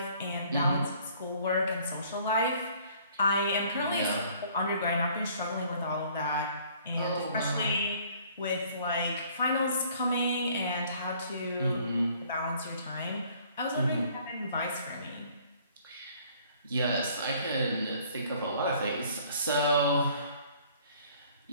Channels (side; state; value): both; inverted; correlation -0.58